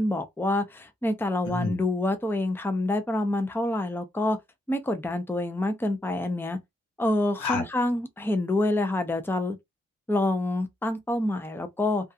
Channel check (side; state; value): both; normal; correlation 0.81